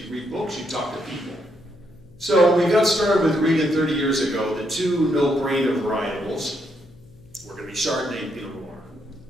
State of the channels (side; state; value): left; noise; hum, 26 dB below the sound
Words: read books, you talk to people. So we got started with Regan 30 years ago. The two no-brainer varietals were going to be Chardonnay and Pinot Noir.